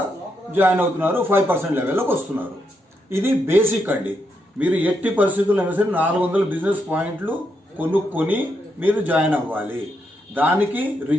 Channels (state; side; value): normal; both; correlation 0.81